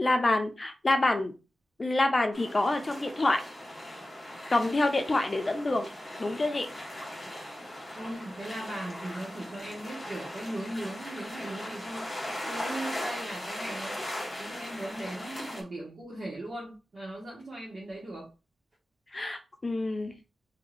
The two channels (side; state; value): both; normal; correlation 0.95